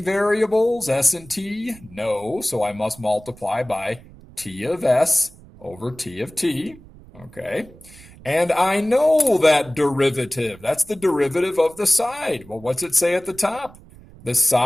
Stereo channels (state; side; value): noise; right; rumble, 22 dB below the sound